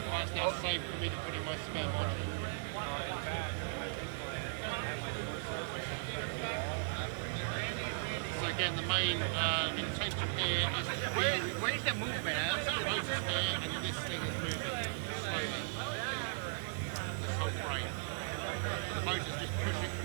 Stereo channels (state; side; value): silent; left; 53 dB below the other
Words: it's now safe for me to put in my spare module. So again, the main intention here is to be... Where's the movement? Here, and this thing is moving slowly. This whole frame. The motor's just